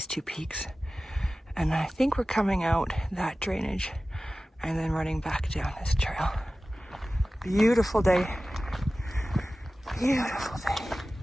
two peaks. And I think we're coming out that drainage and then running back down this trail. Beautiful day. Beautiful day.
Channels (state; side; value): normal; both; correlation 0.96